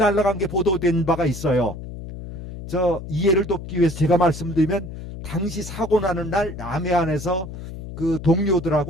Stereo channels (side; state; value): left; noise; hum, 10 dB below the sound